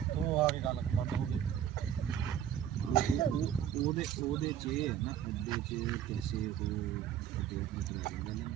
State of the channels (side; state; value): left; quieter; 9.9 dB